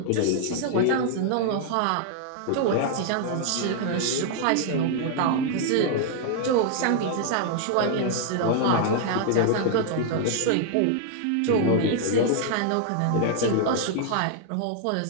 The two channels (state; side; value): different; both; correlation 0.00